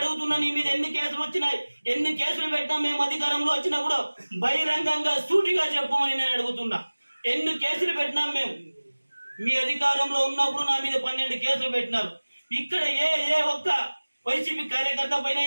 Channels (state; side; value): inverted; both; correlation -1.00